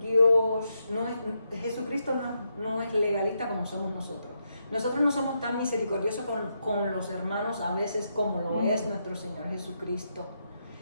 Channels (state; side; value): inverted; both; correlation -0.82